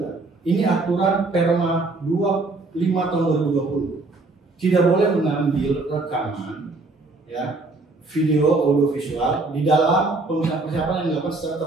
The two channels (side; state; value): left; quieter; 3.3 dB